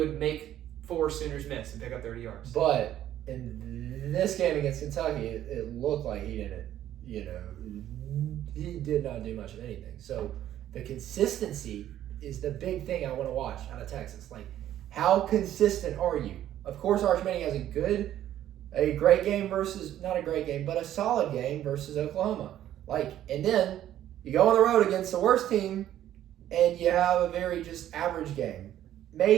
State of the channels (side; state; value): left; quieter; 12.0 dB